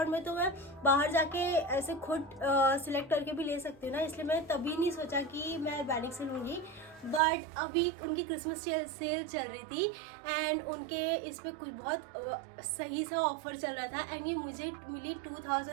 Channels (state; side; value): drops out; left; at 7.2 s